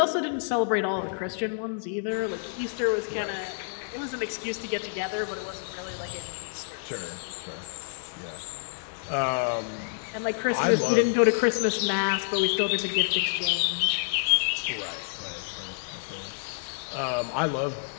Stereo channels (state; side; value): silent; right; 56 dB below the other